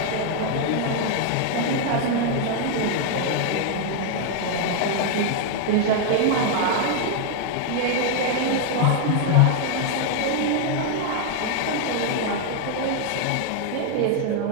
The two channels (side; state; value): both; different; correlation 0.00